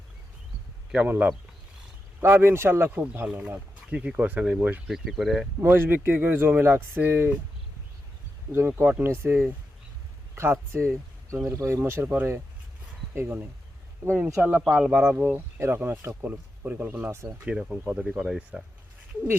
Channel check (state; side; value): normal; both; correlation 0.87